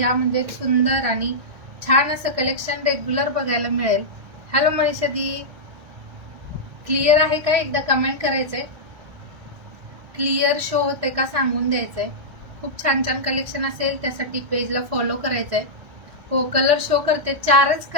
म्हणजे सुंदर आणि छान असं कलेक्शन रेग्युलर बघायला मिळेल. हॅलो मनीषा दी, क्लिअर आहे का एकदा कमेंट करायचंय. क्लिअर शो होते का सांगून द्यायचंय. खूप छान छान कलेक्शन असेल त्यासाठी पेजला फॉलो करायचंय. हो, कलर शो करते. 4च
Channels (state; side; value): late; left; 1.7 ms